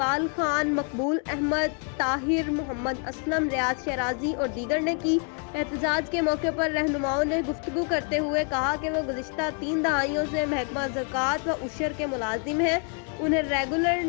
खान, मकबूल अहमद, ताहिर, मोहम्मद असलम, रियाज शराजी और दीगर ने की। एहतजाज के मौके पर रहनुमाओं ने गुफ्तगू करते हुए कहा कि वो गुज़िश्ता 3 दहाइयों से महकमा ज़कात व उशर के मुलाजिम हैं, उन्हें रेगुलर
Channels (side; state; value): right; quieter; 39.8 dB